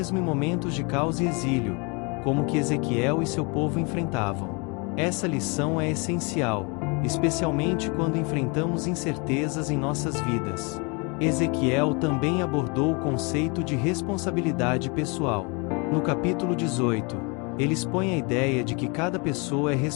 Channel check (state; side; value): quieter; right; 31.2 dB